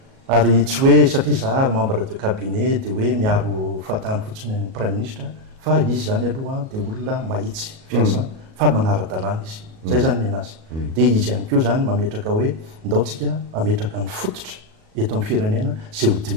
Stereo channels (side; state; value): left; late; 37 ms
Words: ary tsy hoe satria za membre de cabinet dia hoe miaro fahatany fotsiny ny prime ministre fa izy zany aloha dia olona mahitsy fiasa fa manara-dalàna izy zay zany ny anazy dia izy ihany koa zany mametraka hoe ndaotsika ametraka ny fototra eto amin'ny firenena zay ho